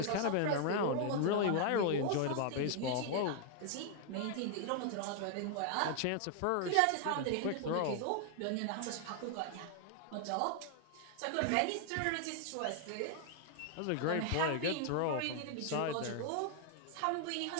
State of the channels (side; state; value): both; different; correlation 0.00